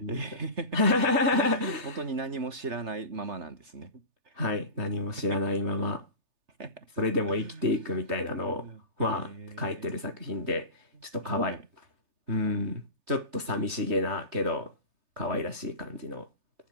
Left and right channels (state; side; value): late; left; 3.3 ms